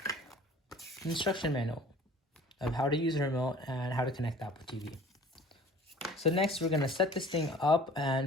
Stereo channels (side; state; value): both; normal; correlation 0.48